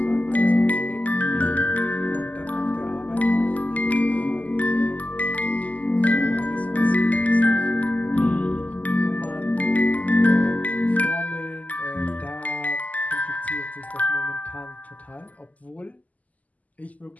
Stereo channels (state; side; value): late; right; 0.076 ms